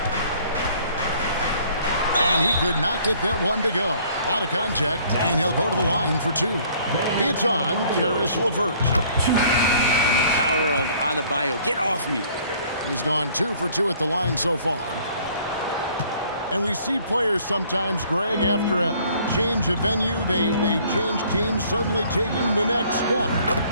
And he could not get that one to go. A lot of contact, and he'll go to the line for two. It's on Caris LeVert. And the power of Adebayo. Get off me. He's gone 2 for 2 at the line so far. And we see players sometimes, Greg, after a change of venue, they change teams, suddenly taking the next step.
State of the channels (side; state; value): both; inverted; correlation -0.58